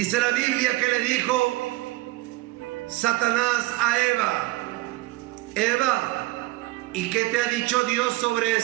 la Biblia que le dijo Satanás a Eva: Eva, ¿y qué te ha dicho Dios sobre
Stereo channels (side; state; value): left; quieter; 19.6 dB